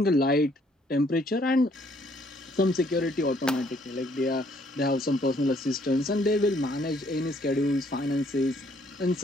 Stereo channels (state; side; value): normal; both; correlation 0.65